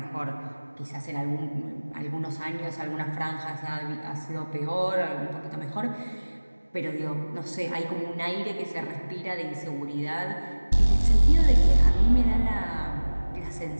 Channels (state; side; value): inverted; both; correlation -1.00